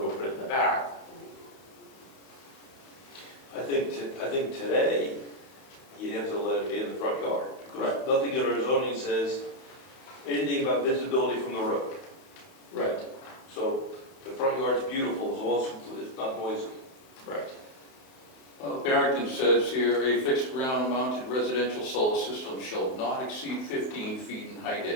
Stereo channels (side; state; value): right; late; 31 ms